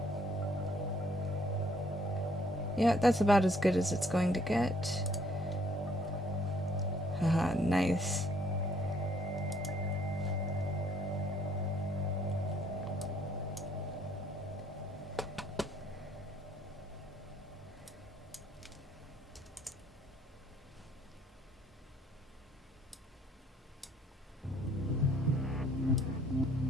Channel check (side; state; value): both; normal; correlation 0.64